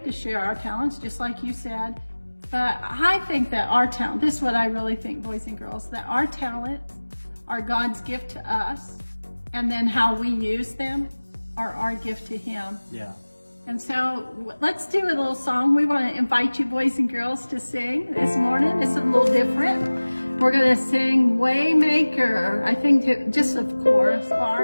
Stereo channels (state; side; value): inverted; both; correlation -1.00